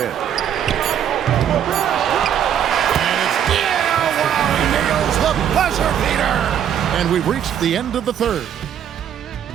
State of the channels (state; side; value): quieter; left; 9.4 dB